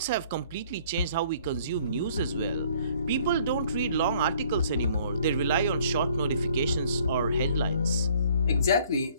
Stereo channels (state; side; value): inverted; both; correlation -0.59